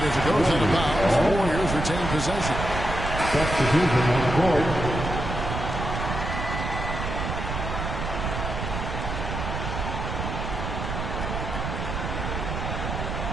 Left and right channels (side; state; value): right; noise; rumble, 4 dB below the sound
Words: as it goes out of bounds. Warriors retain possession. Substitution on the court.